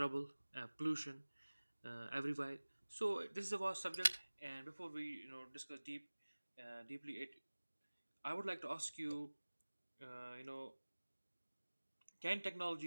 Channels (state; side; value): inverted; both; correlation -1.00